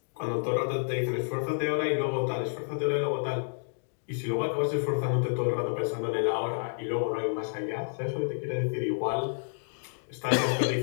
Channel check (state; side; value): silent; right; digital silence